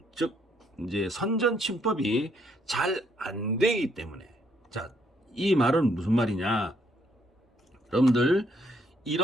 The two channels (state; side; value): normal; both; correlation 0.71